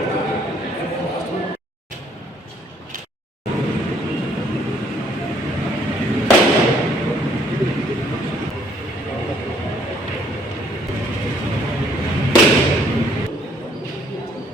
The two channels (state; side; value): normal; both; correlation 0.64